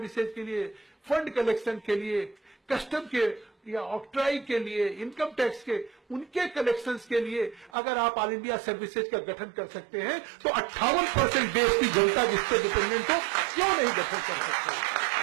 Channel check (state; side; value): drops out; left; at 7.7 s